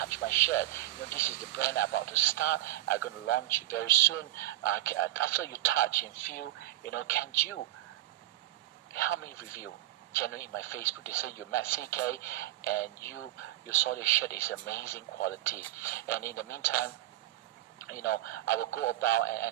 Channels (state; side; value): quieter; left; 15.4 dB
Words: my shirt? This is the brand I'm about to start. I'm going to launch very soon. After you touch and feel, can you help me review? Generally in my Facebook, they say you met CK and you saw the shirt is amazing quality. And in the meantime, I will go about